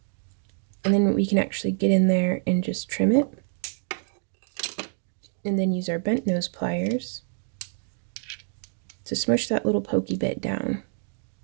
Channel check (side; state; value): left; silent; 60 dB below the other